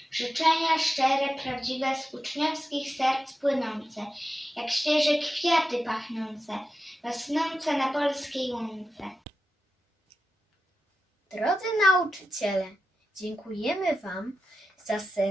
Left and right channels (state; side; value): normal; both; correlation 0.91